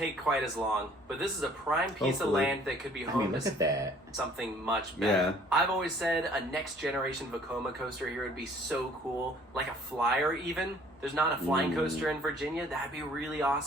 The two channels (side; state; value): both; normal; correlation 0.56